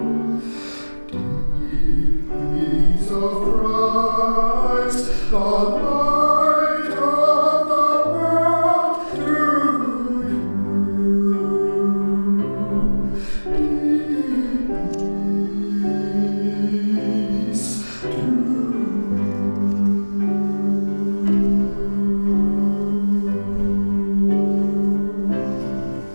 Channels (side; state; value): both; inverted; correlation -1.00